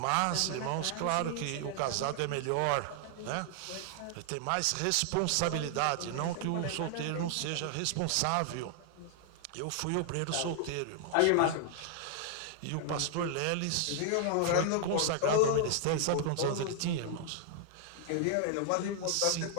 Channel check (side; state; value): both; different; correlation 0.00